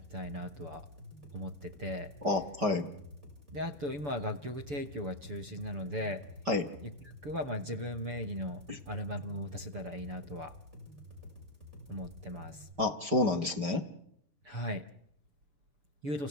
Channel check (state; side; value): late; left; 6.9 ms